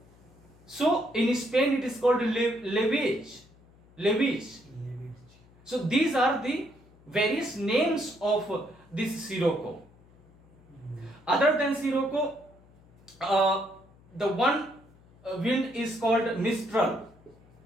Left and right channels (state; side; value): noise; left; hum, 27 dB below the sound